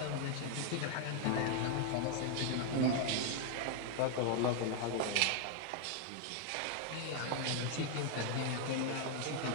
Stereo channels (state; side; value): different; both; correlation 0.00